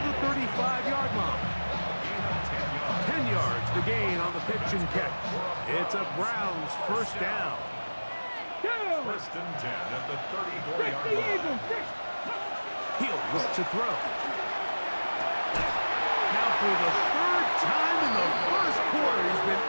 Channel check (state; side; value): inverted; both; correlation -1.00